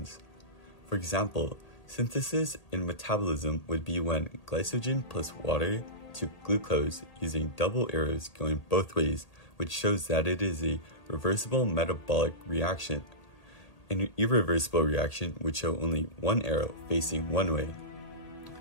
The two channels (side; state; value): right; late; 1.8 ms